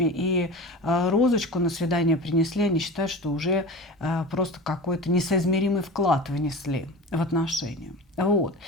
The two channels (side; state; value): both; normal; correlation 0.32